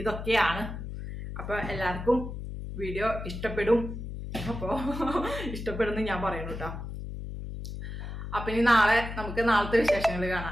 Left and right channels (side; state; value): left; noise; hum, 7 dB below the sound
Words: ഇതൊക്കെയാണ്. അപ്പൊ എല്ലാവർക്കും വീഡിയോ ഇഷ്ടപ്പെടും. അപ്പോ ഇഷ്ടപ്പെടുന്നു ഞാൻ പറയുന്നു കേട്ടോ. അപ്പൊ ഇനി നമുക്ക് നാളത്തെ വിശേഷങ്ങൾ